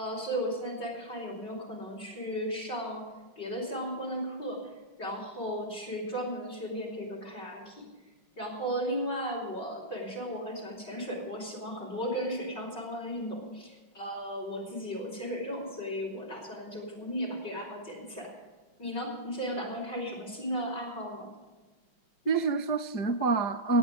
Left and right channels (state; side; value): late; right; 5.4 ms